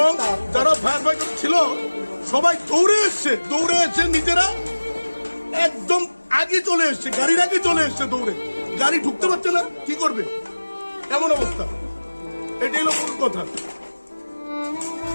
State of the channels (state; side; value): inverted; both; correlation -1.00